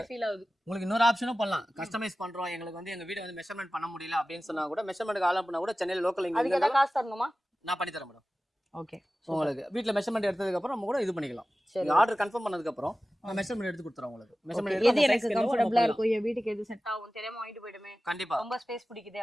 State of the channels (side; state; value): both; normal; correlation 0.96